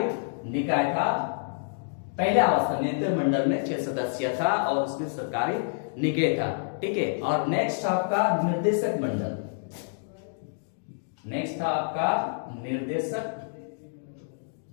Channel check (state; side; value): silent; right; digital silence